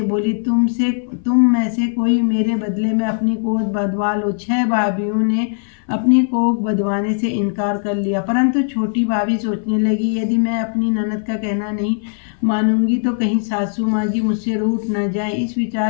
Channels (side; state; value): right; silent; 58 dB below the other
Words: बोली, तुम में से कोई मेरे बदले में अपनी कोख बंधवा लो। 6 भाभियों ने अपनी कोख बंधवाने से इनकार कर लिया, परंतु छोटी भाभी सोचने लगी, यदि मैं अपनी ननद का कहना नहीं मानूंगी तो कहीं सासू माँ जी मुझसे रूठ न जाए। इस